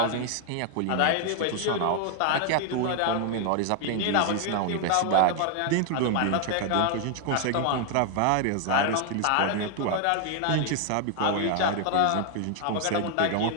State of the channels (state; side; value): different; both; correlation 0.00